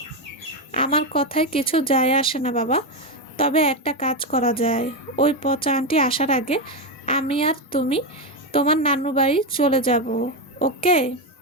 আমার কথায় কিছু যায় আসে না বাবা, তবে একটা কাজ করা যায়। ওই পচা আন্টি আসার আগে আমি আর তুমি তোমার নানু বাড়ি চলে যাব, ওকে?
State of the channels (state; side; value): normal; both; correlation 0.09